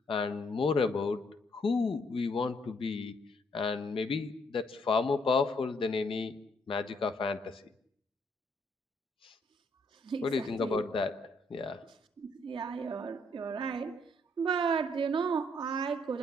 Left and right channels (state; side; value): normal; both; correlation 0.70